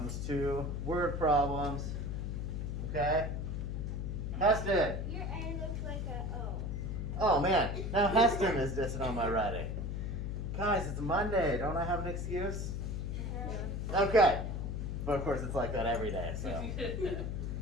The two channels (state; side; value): noise; left; hum, 3 dB below the sound